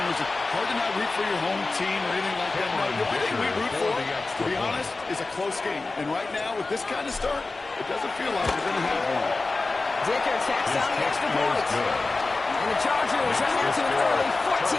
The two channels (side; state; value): right; quieter; 3.5 dB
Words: Is it hard to not root for your home team or anything like that? No, the only thing we root for, to be honest, is a close game. And right now, with this kind of start, it doesn't feel like we're going to have one. Dicker tacks on the extra point. And the Chargers run out to an early